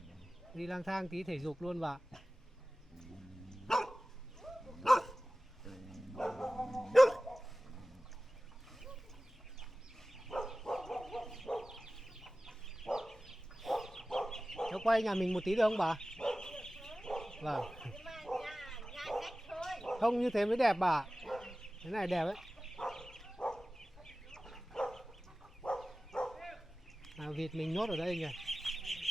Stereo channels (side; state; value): both; normal; correlation 0.97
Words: đi lang thang tí thể dục luôn bà. Cháu quay nhà mình một tí được không bà? Vâng, Nhưng mà nhà cách thôi. không như thế mới đẹp bà. Thế này đẹp ấy. À, vịt mình nhốt ở đây nhỉ?